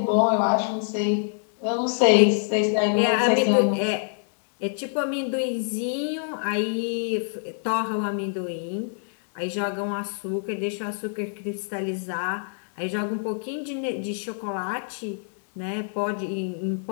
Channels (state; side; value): silent; right; digital silence